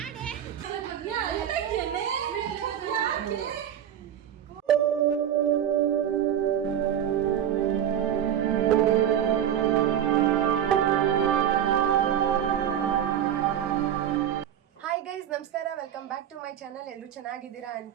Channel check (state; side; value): quieter; left; 10.0 dB